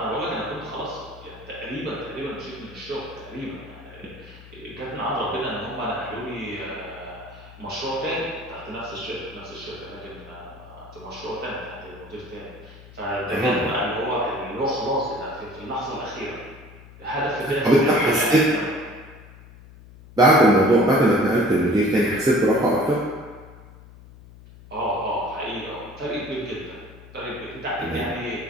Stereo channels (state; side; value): noise; left; hum, 19 dB below the sound